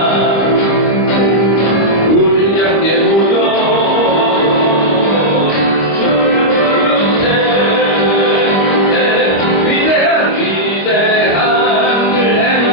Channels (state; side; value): late; right; 25 ms